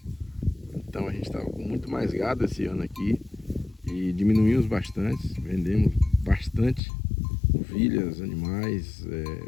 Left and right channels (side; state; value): right; drops out; at 6.8 s